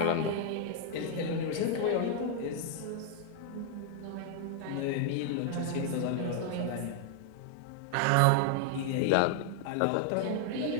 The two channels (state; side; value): different; both; correlation 0.00